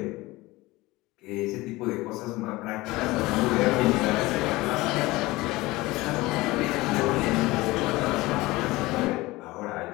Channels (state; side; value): quieter; right; 20.2 dB